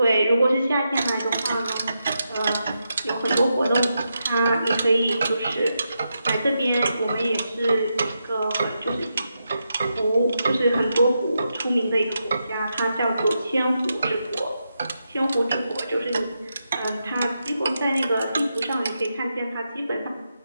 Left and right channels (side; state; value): both; inverted; correlation -0.85